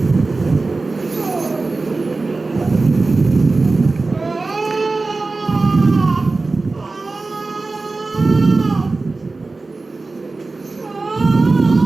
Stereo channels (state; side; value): quieter; left; 3.6 dB